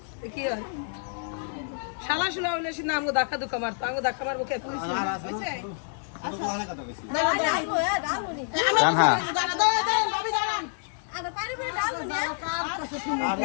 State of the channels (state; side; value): silent; right; digital silence